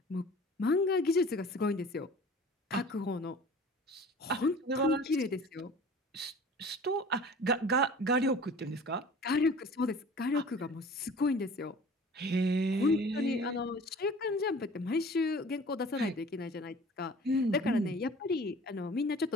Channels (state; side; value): normal; both; correlation 0.45